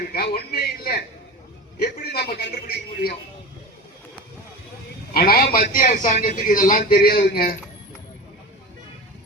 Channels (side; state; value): both; normal; correlation 0.31